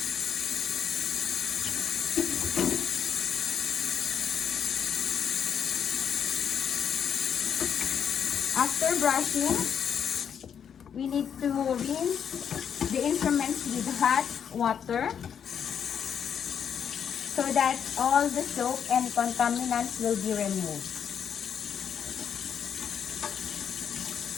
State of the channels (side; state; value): right; quieter; 7.9 dB